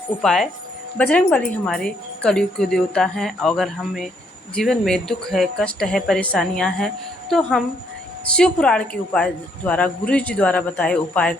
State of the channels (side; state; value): both; normal; correlation 0.71